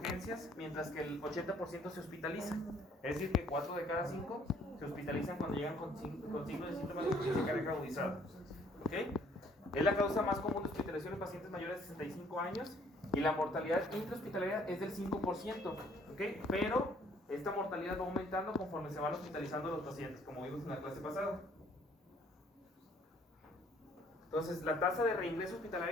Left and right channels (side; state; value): both; normal; correlation 0.61